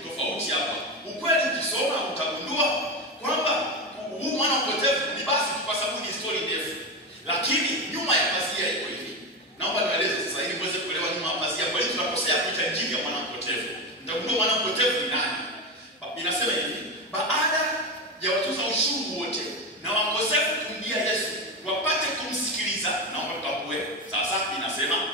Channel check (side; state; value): both; normal; correlation 0.17